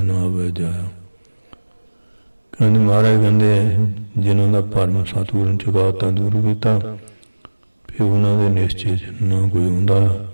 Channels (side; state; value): both; inverted; correlation -1.00